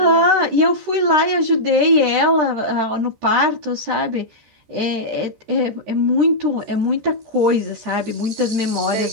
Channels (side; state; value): left; late; 13 ms